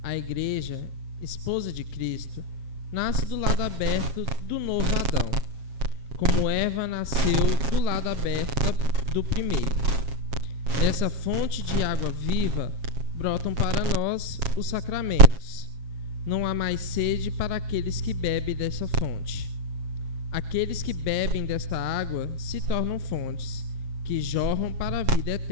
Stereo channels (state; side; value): late; left; 7.4 ms